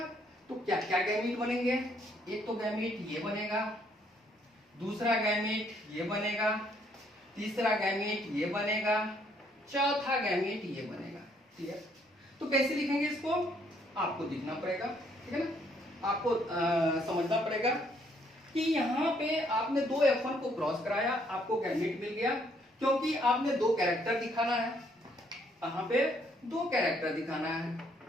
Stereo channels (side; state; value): both; normal; correlation 0.68